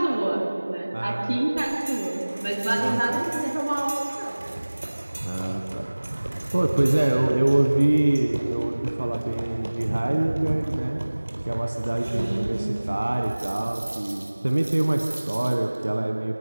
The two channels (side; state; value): both; inverted; correlation -1.00